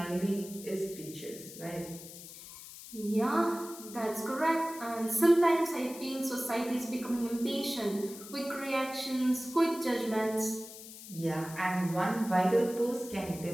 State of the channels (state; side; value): noise; left; hiss, 14 dB below the sound